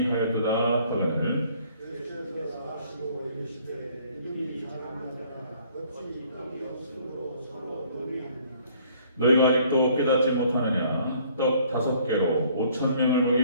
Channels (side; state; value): both; inverted; correlation -0.59